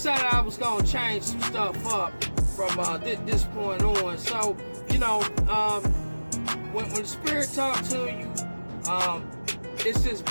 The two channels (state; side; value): inverted; both; correlation -1.00